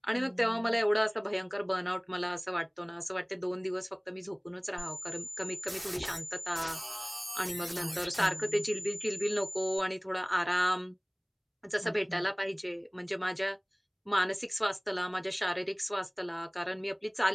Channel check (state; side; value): identical; both; correlation 1.00